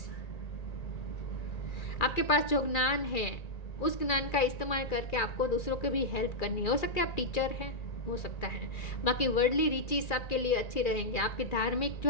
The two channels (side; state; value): right; late; 2.3 ms